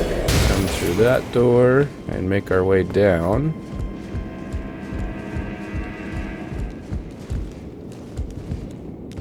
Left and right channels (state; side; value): identical; both; correlation 1.00